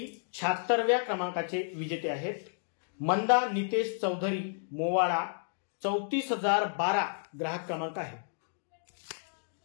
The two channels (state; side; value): silent; right; digital silence